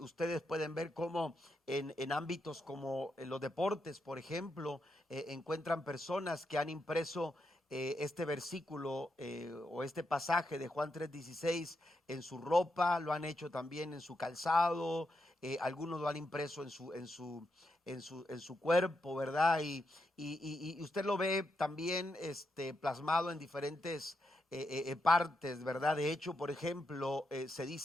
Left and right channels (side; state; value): both; normal; correlation 0.83